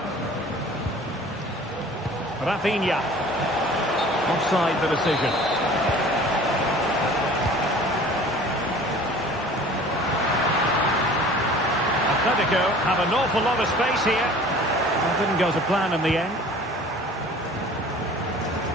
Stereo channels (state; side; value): normal; both; correlation 0.46